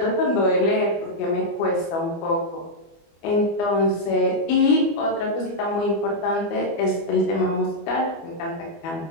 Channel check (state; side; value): late; right; 24 ms